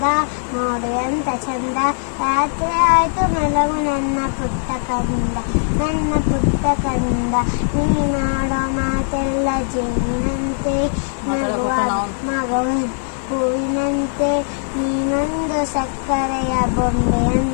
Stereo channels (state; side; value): silent; right; digital silence